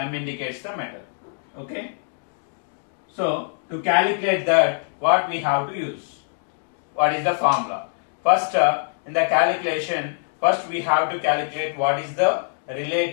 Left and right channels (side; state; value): right; silent; digital silence